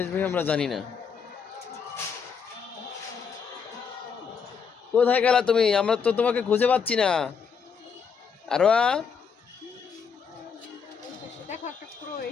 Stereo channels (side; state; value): right; quieter; 6.3 dB